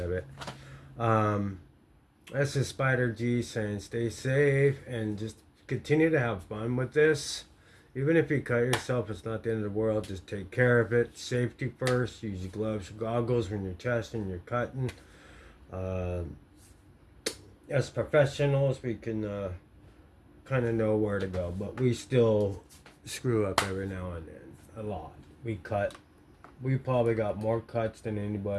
it. This is Spider G saying stay safe and just continue to have fun with this. Even if you cut yourself, it's not the end of the world. Just take care of it. Safety first. Use your gloves, goggles when you're testing, you're cutting. As professionals, we can kind of know where to go, but we still screw up every now and then. A lot. We cut. We probably got more cuts than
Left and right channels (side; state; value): both; identical; correlation 1.00